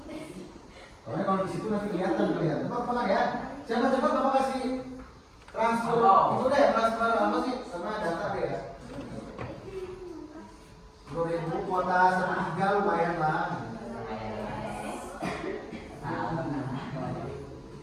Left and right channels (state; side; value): identical; both; correlation 1.00